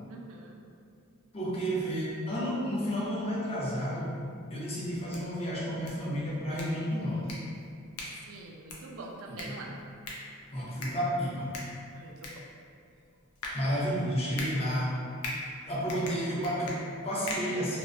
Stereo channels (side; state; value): both; normal; correlation 0.53